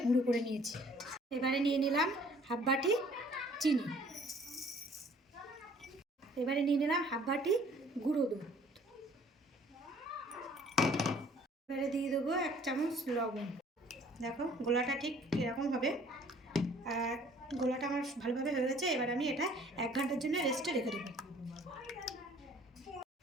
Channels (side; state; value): both; normal; correlation 0.56